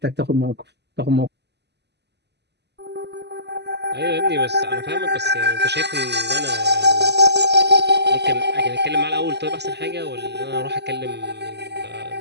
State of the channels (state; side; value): late; left; 0.50 ms